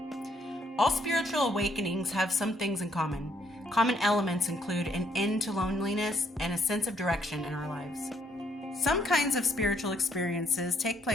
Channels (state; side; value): normal; both; correlation 0.70